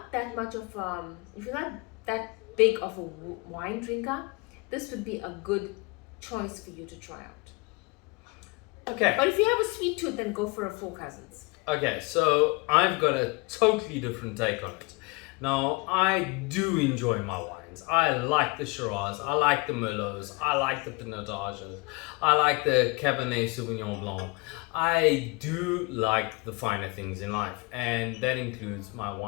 that much of, if you're not that big of a wine drinker, this would be a good choice for you to try out. Okay. But if you have a sweet tooth, then go for a Four Cousins. Okay, so I've got a totally different take on it. Now, I do enjoy my wines. wines. I like the Shiraz, I like the Merlots, I like the Pinotages, I like the Cabernet Sauvignon Blanc. I do like the finer things in life, and that includes my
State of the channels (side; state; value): right; quieter; 27.5 dB